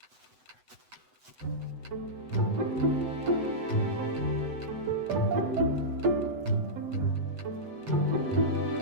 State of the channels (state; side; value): late; left; 7.9 ms